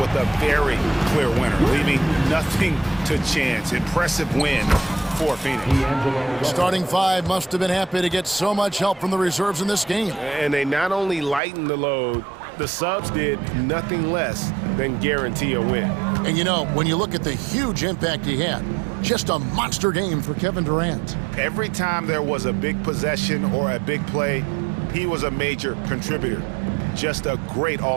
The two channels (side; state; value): left; drops out; at 11.4 s